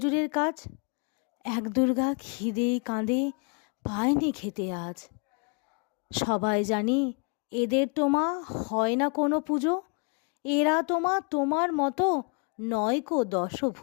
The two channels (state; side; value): quieter; right; 36.9 dB